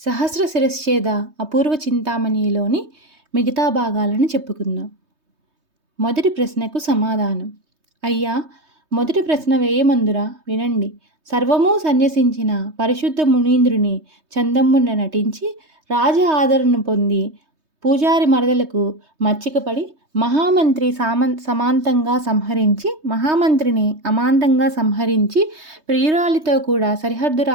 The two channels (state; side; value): late; left; 3.2 ms